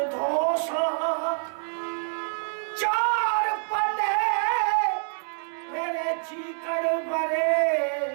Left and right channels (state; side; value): silent; left; digital silence